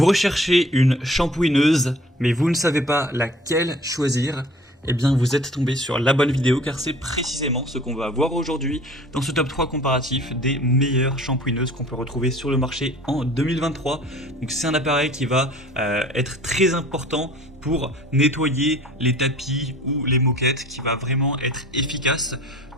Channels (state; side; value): normal; both; correlation 0.48